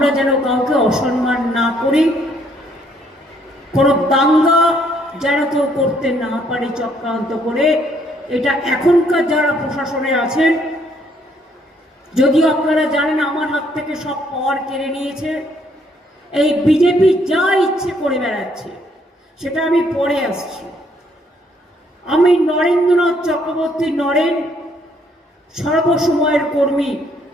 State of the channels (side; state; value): both; normal; correlation 0.68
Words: যেন কাউকে অসম্মান না করি, কোনো দাঙ্গা যেন কেউ করতে না পারে চক্রান্ত করে। এটা এখনকার যারা প্রশাসনে আছেন, যদিও আপনারা জানেন আমার হাত থেকে সব পাওয়ার কেড়ে নিয়েছে, এই বিজেপি যা ইচ্ছে করে বেড়াচ্ছে, সেটা আমি পরে আসছি। আমি নরেন্দ্রনাথ চক্রবর্তী নরেন সর্বসময়ের কর্মী,